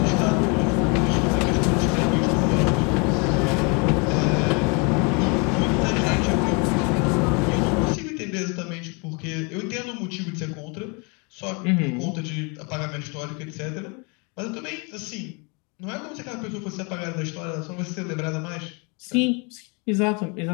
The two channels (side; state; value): right; quieter; 32.2 dB